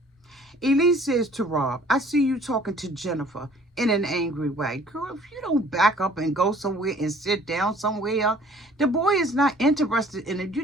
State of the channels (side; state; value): both; normal; correlation 0.55